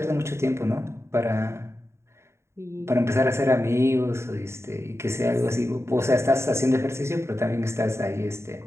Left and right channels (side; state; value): left; late; 0.13 ms